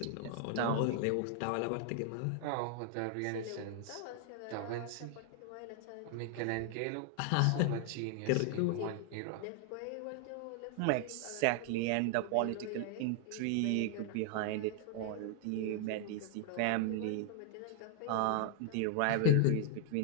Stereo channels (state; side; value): different; both; correlation 0.00